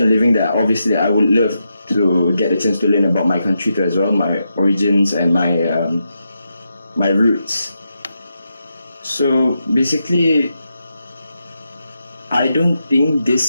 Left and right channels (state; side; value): inverted; both; correlation -0.85